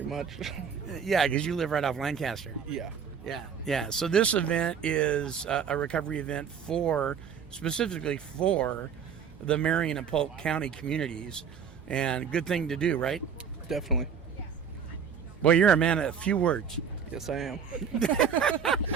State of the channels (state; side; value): quieter; left; 7.1 dB